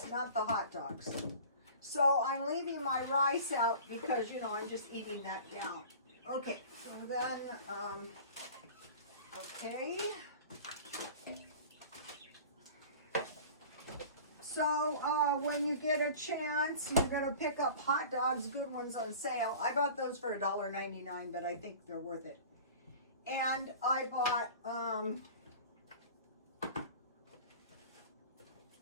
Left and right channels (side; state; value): both; inverted; correlation -0.41